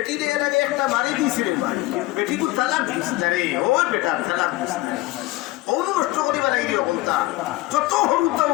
দিয়ে এর আগে একটা বাড়ি দিয়েছে রে ভাই বেটি কু তালাক দিস না রে ও বেটা তালাক দিস না ওনু নষ্ট করিবা লাগি অকলতা যত হরুতা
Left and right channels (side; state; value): right; quieter; 18.9 dB